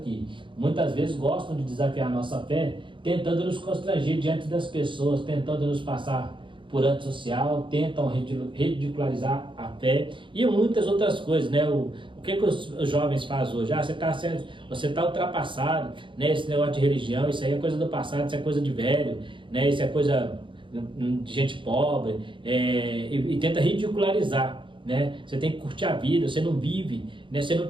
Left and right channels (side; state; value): left; late; 0.24 ms